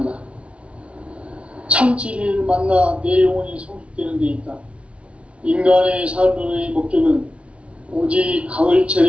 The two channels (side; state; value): left; late; 0.061 ms